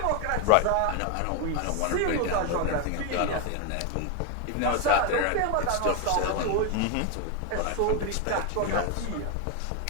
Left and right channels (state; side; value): different; both; correlation 0.01